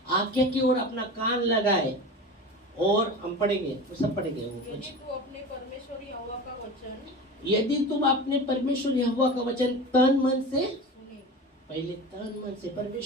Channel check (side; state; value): both; normal; correlation 0.31